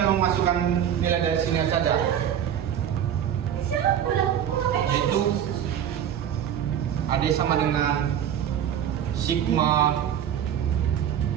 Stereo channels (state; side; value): quieter; left; 9.6 dB